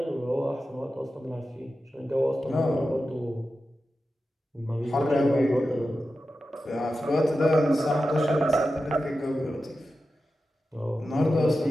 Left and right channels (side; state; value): both; normal; correlation 0.92